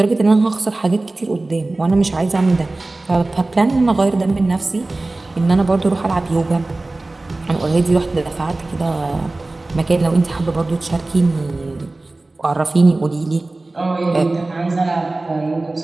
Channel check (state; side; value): quieter; left; 3.0 dB